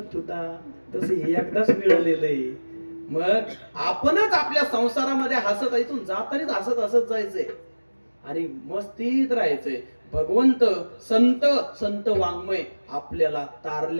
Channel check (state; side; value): inverted; both; correlation -1.00